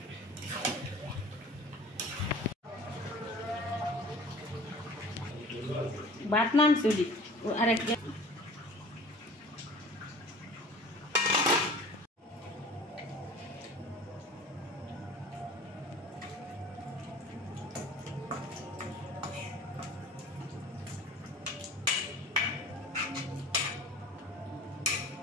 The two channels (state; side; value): normal; both; correlation 0.44